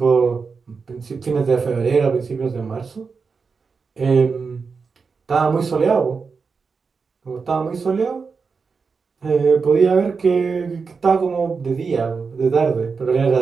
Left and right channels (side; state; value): left; quieter; 5.1 dB